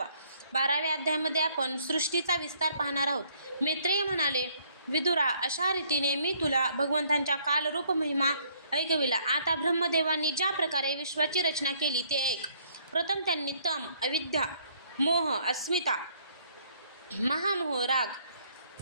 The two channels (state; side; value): inverted; both; correlation -0.65